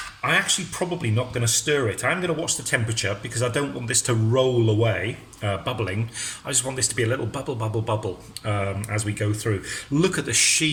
I'm actually probably not going to stir it. I'm going to watch the temperature, because I don't want this to roll away, bubbling. I just want this to be a little bubble as we go through. Look at the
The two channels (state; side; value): identical; both; correlation 1.00